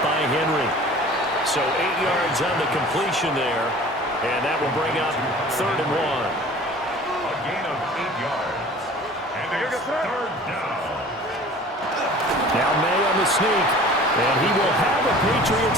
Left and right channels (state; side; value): normal; both; correlation 0.45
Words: by Henry. So 8 yards on the completion there. And that will bring up 3rd and 1. A gain of 8 yards. And it's 3rd down. Now May on the sneak. And he will have a